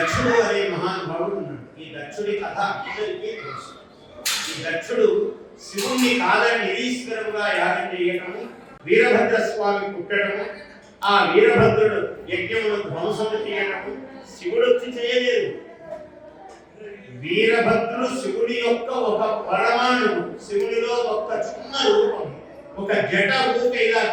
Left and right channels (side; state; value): both; identical; correlation 1.00